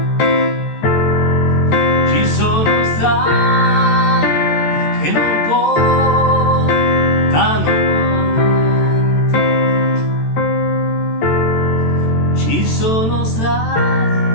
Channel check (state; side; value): late; right; 13 ms